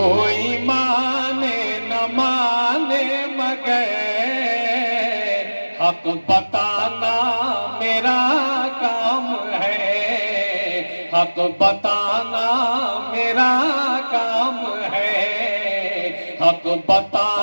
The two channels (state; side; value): inverted; both; correlation -1.00